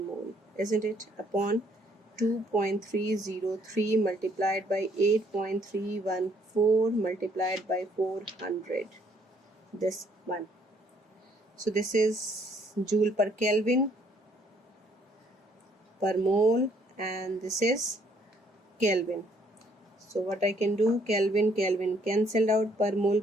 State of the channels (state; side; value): normal; both; correlation 0.66